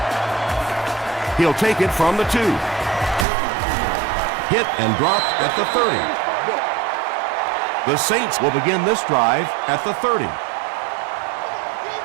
He'll take it from the 2. Hit and dropped at the 30. The Saints will begin this drive at the 30.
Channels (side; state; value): left; drops out; at 3.2 s